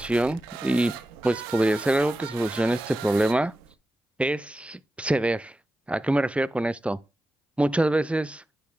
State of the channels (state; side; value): normal; both; correlation 0.93